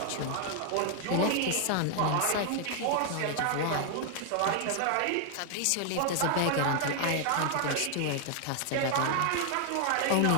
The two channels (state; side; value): different; both; correlation 0.00